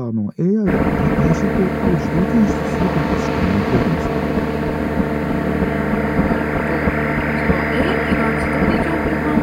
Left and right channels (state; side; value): identical; both; correlation 1.00